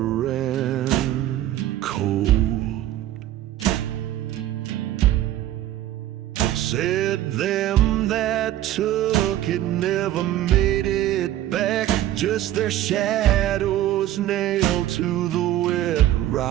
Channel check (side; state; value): left; quieter; 13.3 dB